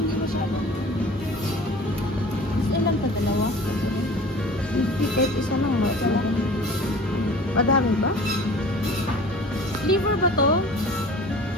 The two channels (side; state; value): both; normal; correlation 0.43